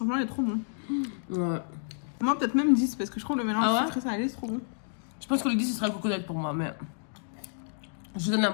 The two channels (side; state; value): right; silent; digital silence